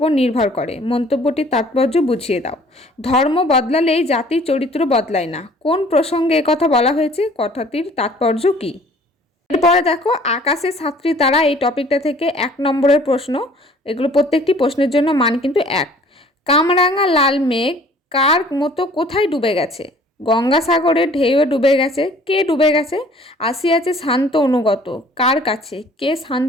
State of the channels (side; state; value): both; normal; correlation 0.53